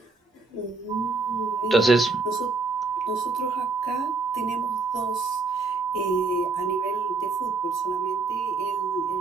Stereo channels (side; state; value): left; quieter; 4.1 dB